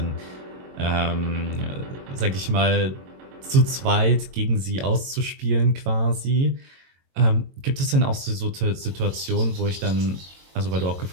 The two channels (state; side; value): late; left; 22 ms